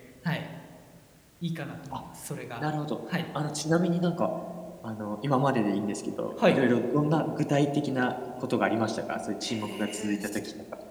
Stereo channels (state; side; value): identical; both; correlation 1.00